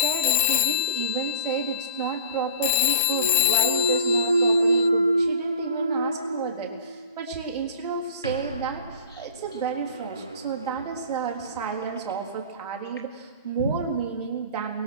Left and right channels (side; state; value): both; inverted; correlation -0.38